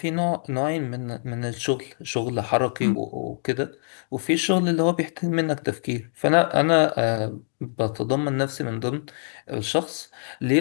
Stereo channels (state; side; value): silent; right; digital silence